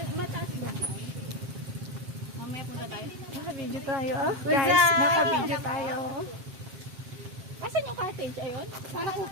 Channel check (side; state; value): left; late; 7.4 ms